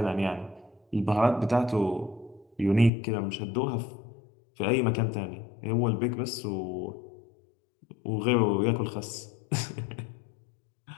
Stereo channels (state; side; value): drops out; right; at 2.9 s